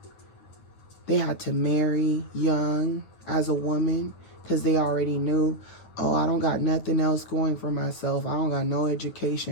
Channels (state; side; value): late; right; 9.5 ms